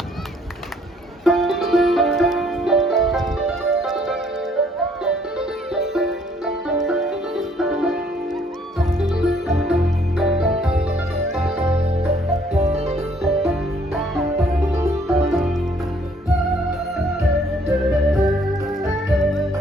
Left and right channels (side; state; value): both; normal; correlation 0.63